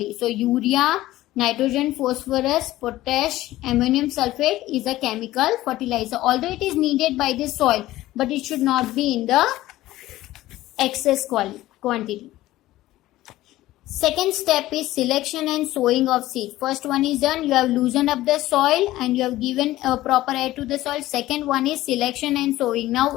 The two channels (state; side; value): quieter; right; 16.0 dB